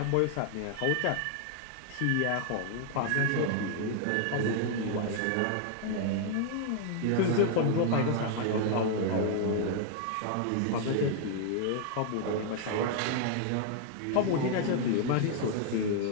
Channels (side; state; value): both; different; correlation 0.00